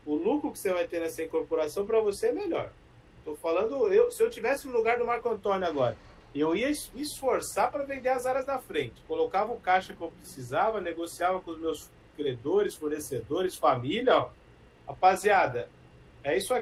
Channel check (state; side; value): identical; both; correlation 1.00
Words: o lucro que você vai ter nessa incorporação para você é melhor. Estou falando, se eu tivesse no lugar do Marco Antônio agora, eu ia me esforçar para vender as áreas da frente. Colocava o caixa que eu precisava, negociava com os meus credores, fornecedores, família. Ó. Rapaziada, é isso